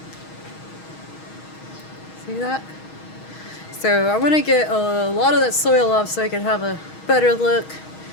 See that? So I want to get a lot of that soil off so I can have a better look.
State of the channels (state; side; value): late; right; 6.3 ms